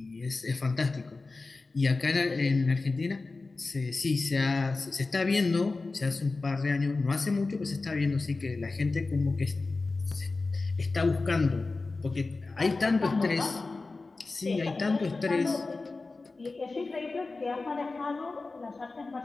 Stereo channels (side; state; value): right; quieter; 3.6 dB